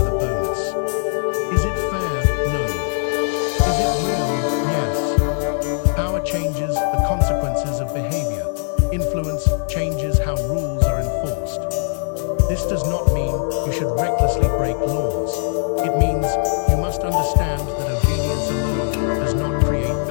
a bonus. Is it fair? No. Is it real? Yes. Power changes the consequences of behavior. Influence changes how rules are enforced. forced. This does not mean you should recklessly break laws. It means you must understand that obedience alone does not create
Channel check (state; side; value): silent; right; digital silence